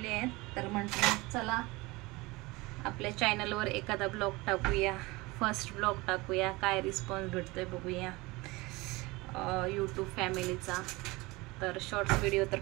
आहेत, तर म्हटलं चला आपल्या चॅनलवर एखादा ब्लॉग टाकूया, फर्स्ट ब्लॉग टाकूया, काय रिस्पॉन्स भेटतोय बघूया यूट्यूब फॅमिलीचा। तर शॉर्ट्स व्हिडिओ तर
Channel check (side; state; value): left; quieter; 22.8 dB